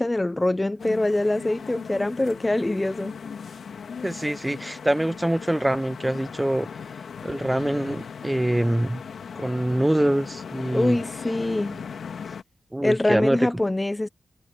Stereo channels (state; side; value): normal; both; correlation 0.98